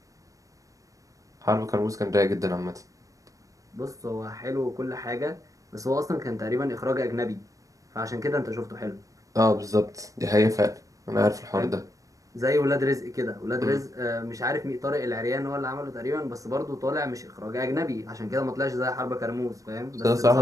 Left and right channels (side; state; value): left; late; 0.16 ms